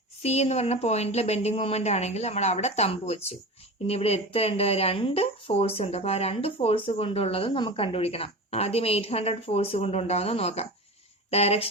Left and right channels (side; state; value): both; normal; correlation 0.29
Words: C എന്ന് പറഞ്ഞ പോയിന്റിൽ ബെൻഡിങ് മൊമെന്റ് ആണെങ്കിൽ നമ്മൾ അവിടെ തമ്പ് വെച്ചു. ഇനി ഇവിടെ എത്രയുണ്ട്, രണ്ട് ഫോഴ്സ് ഉണ്ട്. അപ്പൊ ആ രണ്ട് ഫോഴ്സ് കൊണ്ടുള്ളത് നമുക്ക് കണ്ടുപിടിക്കണം. ആദ്യം 800 ഫോഴ്സ് കൊണ്ടുണ്ടാവുന്ന നോക്കാം.